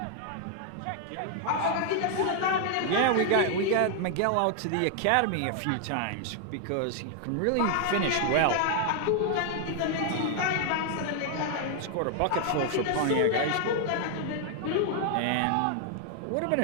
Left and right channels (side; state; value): both; different; correlation 0.00